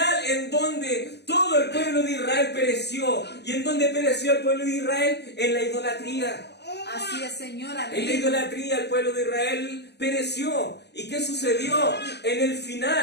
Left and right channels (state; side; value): late; right; 0.49 ms